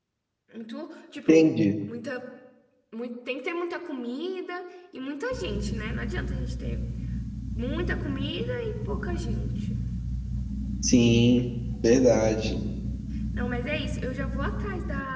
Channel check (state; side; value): identical; both; correlation 1.00